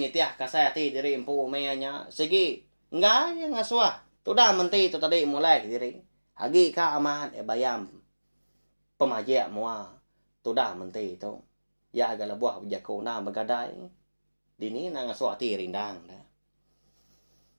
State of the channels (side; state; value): both; inverted; correlation -1.00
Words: tiah kasai hati diri empu mayanya. Segi enggak yang ngasuah. Tu dah Menti tu tadi mulai diri. Hagi ka amat bayam. Pemajak mua. Tu dah Menti tu. Ya agak buah berjakau na bergadai. Dini nang suati rindang dah.